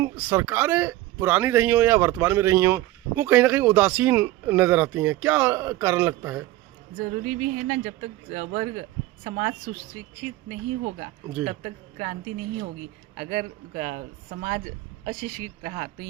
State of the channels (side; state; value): left; quieter; 16.5 dB